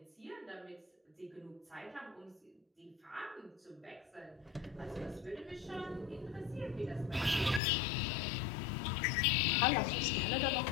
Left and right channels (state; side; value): drops out; right; at 7.6 s